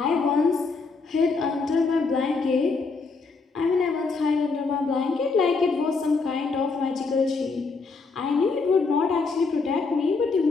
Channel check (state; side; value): quieter; right; 4.3 dB